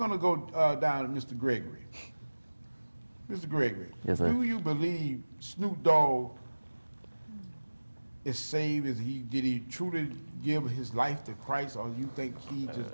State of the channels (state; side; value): inverted; both; correlation -1.00